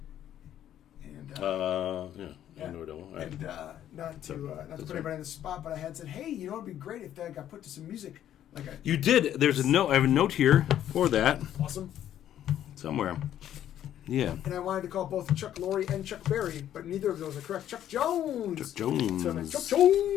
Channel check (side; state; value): right; quieter; 11.1 dB